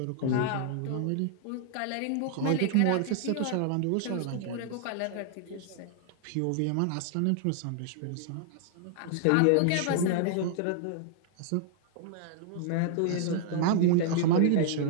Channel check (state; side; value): different; both; correlation -0.01